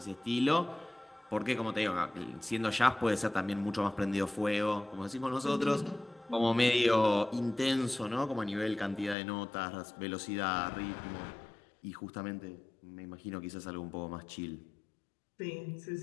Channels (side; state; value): right; drops out; at 9.2 s